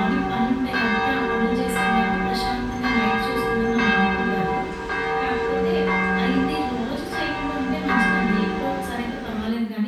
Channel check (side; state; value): both; identical; correlation 1.00